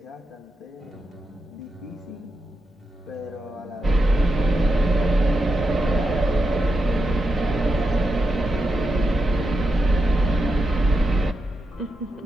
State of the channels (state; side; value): normal; both; correlation 0.86